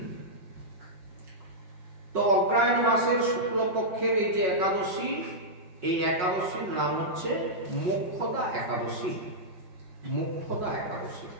তো অগ্রহায়ণ মাসের শুক্লপক্ষের এই যে একাদশী, এই একাদশীর নাম হচ্ছে মোক্ষদা একাদশী। মোক্ষদা একাদশী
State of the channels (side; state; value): left; late; 5.5 ms